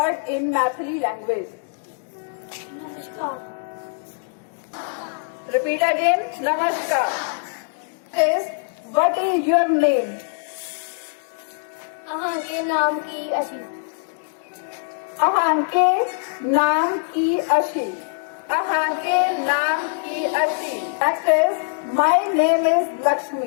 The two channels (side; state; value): right; silent; digital silence